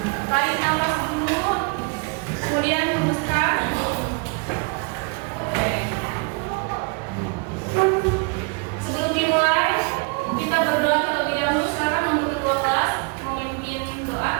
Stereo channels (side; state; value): left; quieter; 33.1 dB